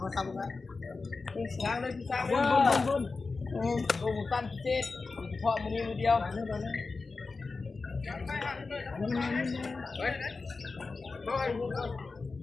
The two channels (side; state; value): right; quieter; 4.1 dB